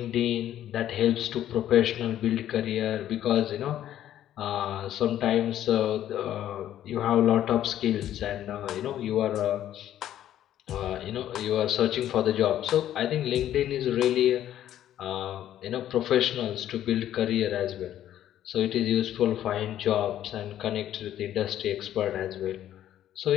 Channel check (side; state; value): right; quieter; 11.7 dB